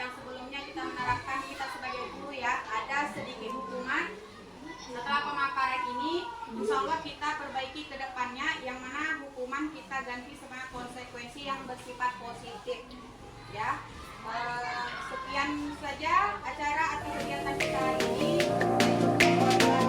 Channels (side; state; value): both; identical; correlation 1.00